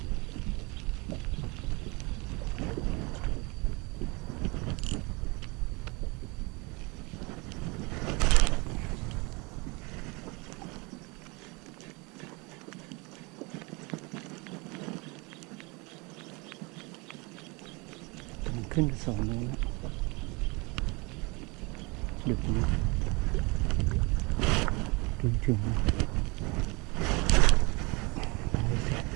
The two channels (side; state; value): left; quieter; 27.4 dB